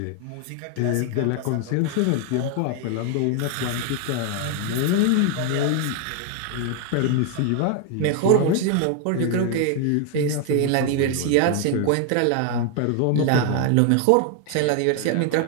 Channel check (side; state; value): both; different; correlation 0.00